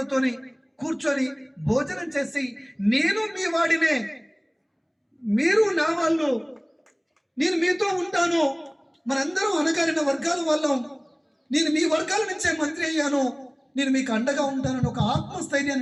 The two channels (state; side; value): identical; both; correlation 1.00